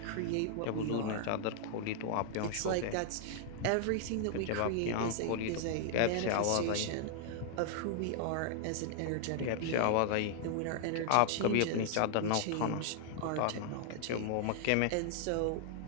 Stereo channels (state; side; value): different; both; correlation 0.00